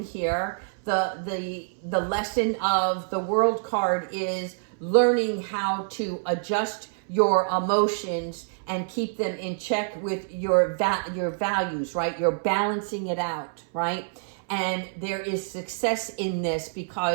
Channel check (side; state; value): left; silent; 60 dB below the other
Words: here, the lesson of the world card is learning how to adjust your emotions and keep them in check with your values, right? You're balancing it out, right? And there is success in this